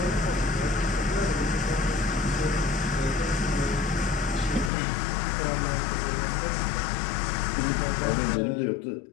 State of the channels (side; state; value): right; drops out; at 4.7 s